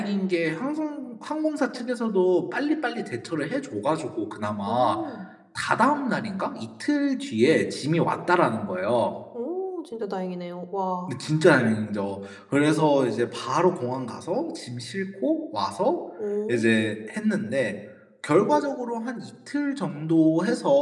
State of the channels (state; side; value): identical; both; correlation 1.00